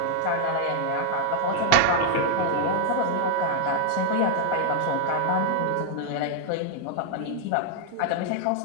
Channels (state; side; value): different; both; correlation 0.00